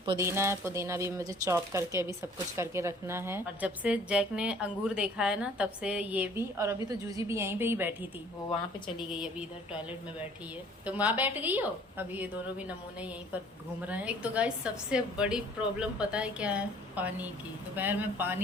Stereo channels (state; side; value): normal; both; correlation 0.54